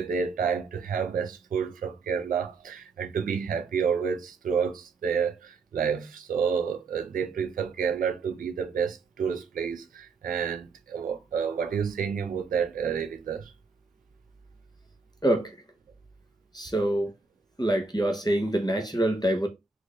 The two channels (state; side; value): quieter; left; 4.1 dB